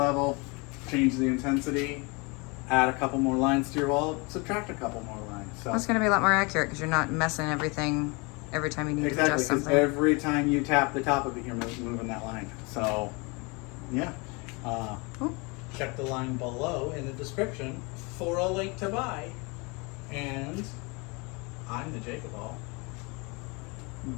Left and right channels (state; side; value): quieter; right; 29.1 dB